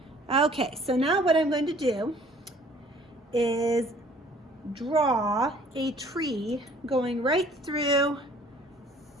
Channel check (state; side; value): normal; both; correlation 0.55